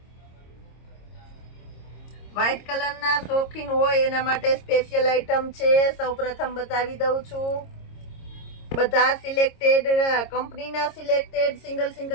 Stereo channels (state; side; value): late; right; 26 ms